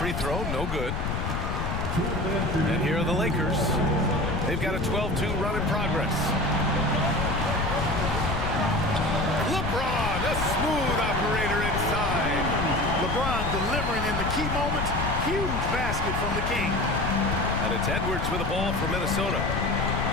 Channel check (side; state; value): left; noise; rumble, 2 dB below the sound